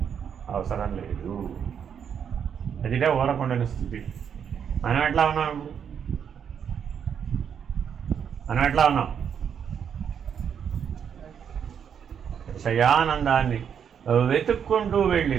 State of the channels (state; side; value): quieter; left; 7.8 dB